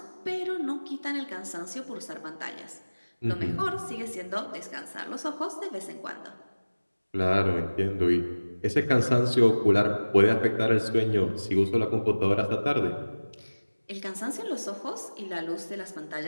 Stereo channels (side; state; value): both; inverted; correlation -1.00